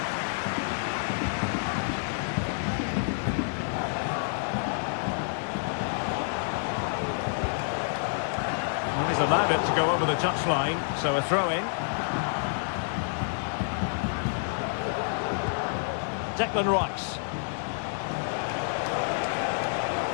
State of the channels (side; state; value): right; silent; 59 dB below the other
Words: And he's allowed it to go over the touchline, so a throw-in. Declan Rice.